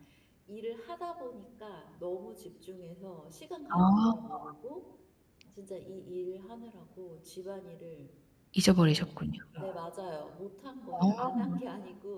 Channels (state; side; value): identical; both; correlation 1.00